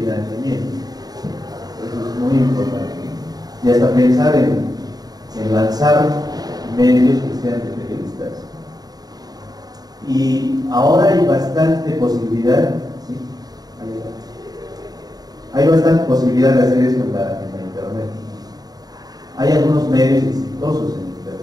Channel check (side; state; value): left; late; 0.19 ms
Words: Eso es muy importante. Y hasta pensar en lanzar medios que sean de periodistas. Y ahora hay bastante posibilidad, ¿sí? Hay bastante posibilidad de hacer esto en la internet. Hay algunos medios exitosos en